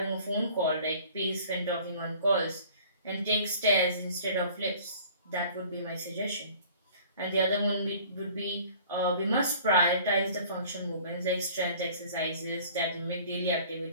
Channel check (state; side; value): inverted; both; correlation -0.49